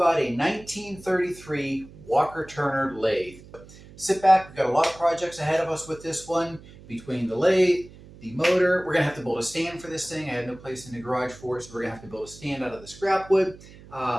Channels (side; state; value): right; noise; hum, 20 dB below the sound